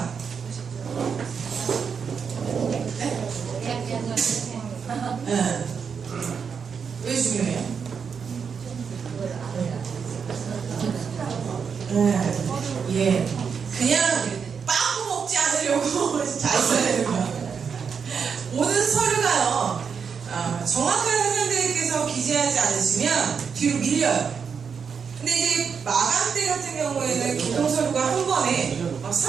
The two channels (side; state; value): left; quieter; 6.3 dB